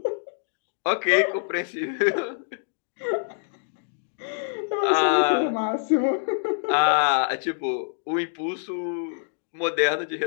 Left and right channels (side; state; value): right; silent; digital silence